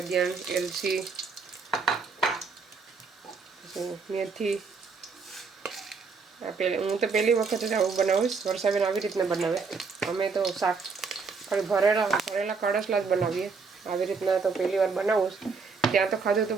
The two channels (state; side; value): quieter; left; 4.9 dB